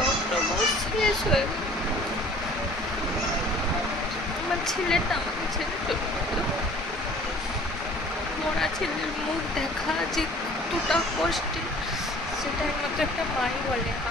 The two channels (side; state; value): both; normal; correlation 0.50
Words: অক্টোবর শেষ হয়ে গেল। আমার ছেলেটা আমাকে ছেড়ে চলে গেল। মরা ছেলের মুখ দেখা যে কতটা কষ্টের সেটা একমাত্র একটা মাই বলে।